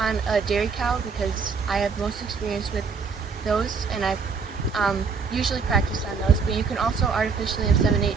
a dairy cow because I have most experience with those, and I've usually practiced on those, but you can also artificially inseminate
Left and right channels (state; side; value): quieter; left; 5.3 dB